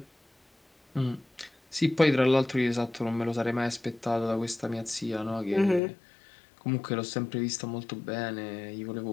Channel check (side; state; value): right; drops out; at 5.8 s